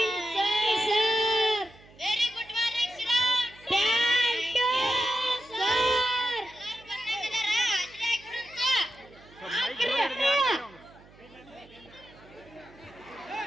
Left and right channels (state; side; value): noise; right; hum, 24 dB below the sound